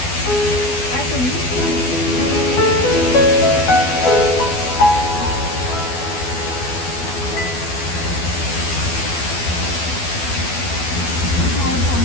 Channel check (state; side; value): late; right; 12 ms